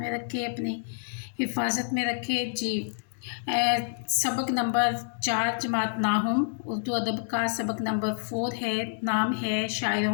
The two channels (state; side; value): silent; right; digital silence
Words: रखे, अपनी हिफाजत में रखे। जी, सबक नंबर 4 जमात नाहुम उर्दू अदब का सबक नंबर 4 है। नाम है